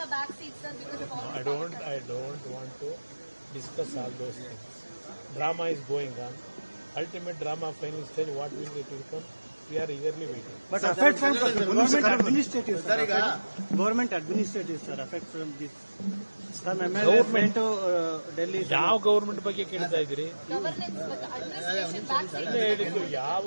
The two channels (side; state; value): both; inverted; correlation -1.00